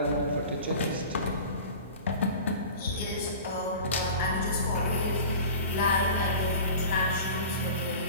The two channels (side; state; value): both; inverted; correlation -0.37